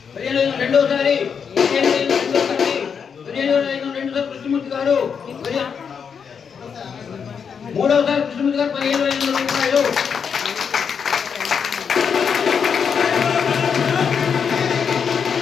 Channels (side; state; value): right; quieter; 6.7 dB